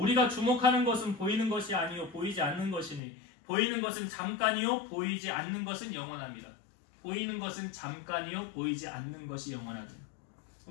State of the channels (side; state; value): right; drops out; at 3.0 s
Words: 주목하는 것은 보이는 것이 아니요 보이지 않는 것이니 보이는 것은 잠깐이요 보이지 않는 것은 영원합니다. 보이는 것은 잠깐이요 보이지 않는 것이 영원하다.